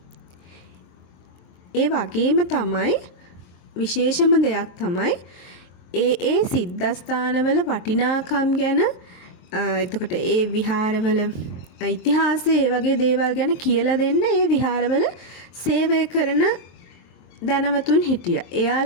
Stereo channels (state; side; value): late; right; 23 ms